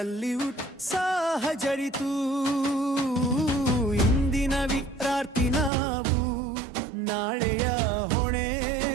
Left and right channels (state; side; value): drops out; left; at 5.7 s